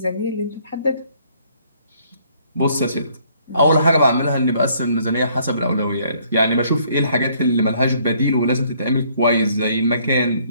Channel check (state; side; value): inverted; both; correlation -0.64